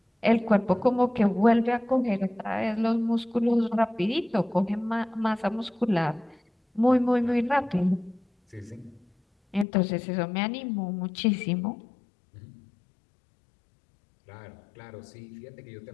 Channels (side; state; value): right; drops out; at 9.7 s